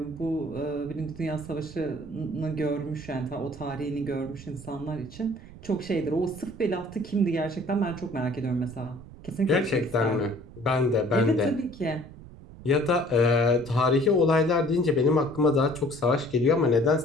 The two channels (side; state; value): right; noise; rumble, 17 dB below the sound